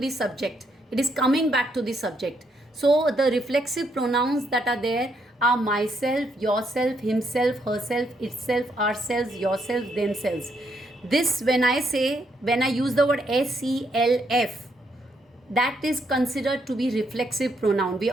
subject. It is coming back to the subject. So the reflexive pronouns that are there are myself, yourself, himself, herself, itself, ourselves, yourself, themselves. This, when I use the word self, that is considered to be reflexive pronoun. We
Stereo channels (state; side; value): normal; both; correlation 0.75